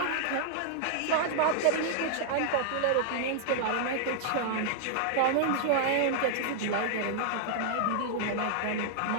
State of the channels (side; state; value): both; different; correlation -0.01